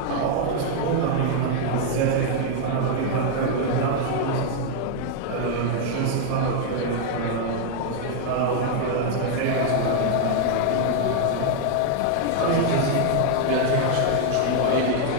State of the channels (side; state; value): both; different; correlation 0.00